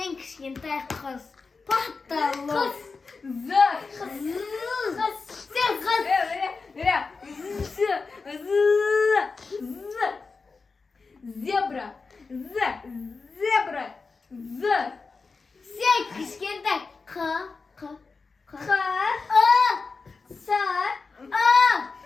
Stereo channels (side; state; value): right; quieter; 4.4 dB